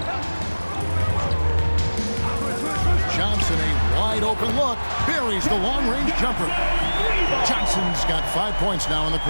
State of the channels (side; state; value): both; inverted; correlation -1.00